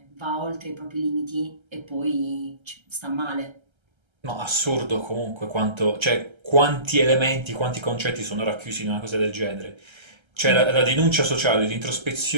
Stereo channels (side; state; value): left; late; 1.3 ms